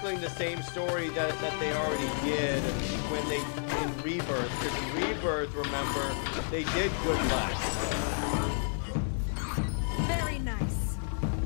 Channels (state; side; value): silent; right; digital silence